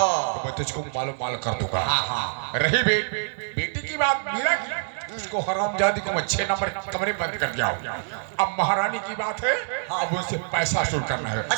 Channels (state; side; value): silent; left; 58 dB below the other